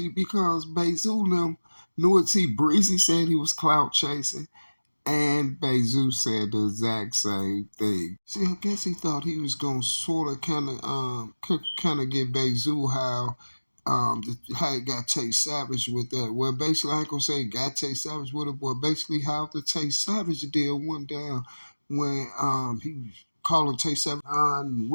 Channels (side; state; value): both; inverted; correlation -1.00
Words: because Bayzoo them knew it. See, Breezy said he was clout chasing. And Bayzoo said the exact same thing. See, I guess he thought he was gonna sort of kind of get Bayzoo how it got Tay Savage with that. Well, basically, I ain't gonna say got Tay Savage with it, but basically how the Tay Savage deal went down when he was calling Tay Savage